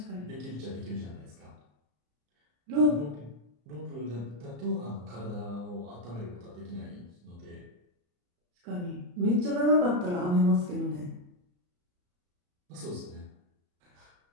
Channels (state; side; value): late; left; 34 ms